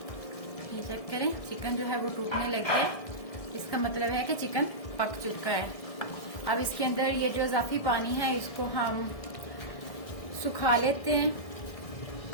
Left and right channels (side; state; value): right; late; 1.6 ms